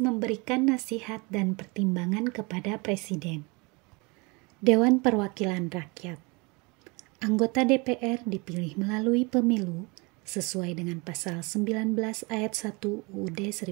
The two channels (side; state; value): left; quieter; 27.9 dB